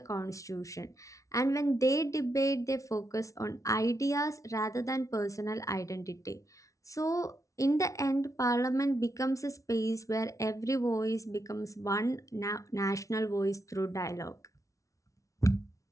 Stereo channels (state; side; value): late; right; 0.16 ms